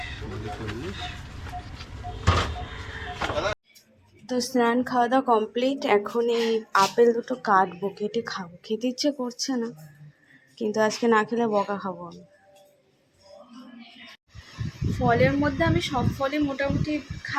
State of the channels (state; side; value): identical; both; correlation 1.00